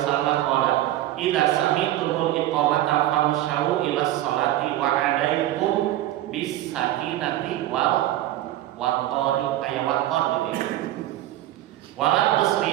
qala idza sami'tumul iqamata famshaw ila sholati wa alaikum bis sakinati wal waqari aya waqar gitu. Wala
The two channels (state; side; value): quieter; left; 14.3 dB